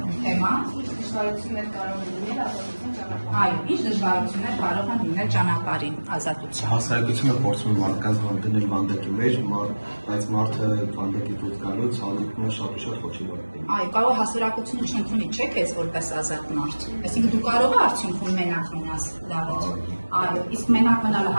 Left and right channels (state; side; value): inverted; both; correlation -1.00